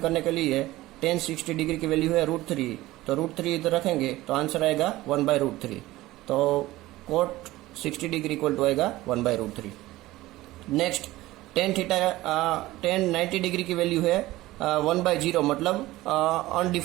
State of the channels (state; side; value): quieter; left; 17.5 dB